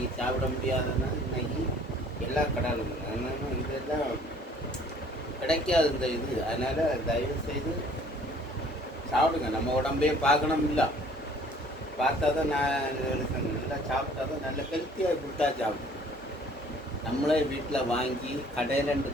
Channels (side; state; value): both; normal; correlation 0.55